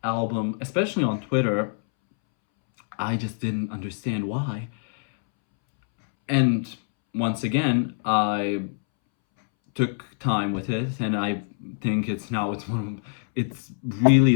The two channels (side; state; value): right; silent; 62 dB below the other